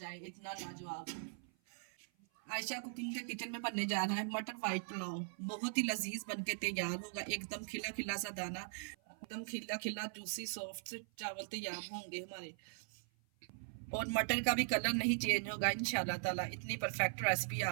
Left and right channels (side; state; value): left; silent; 51 dB below the other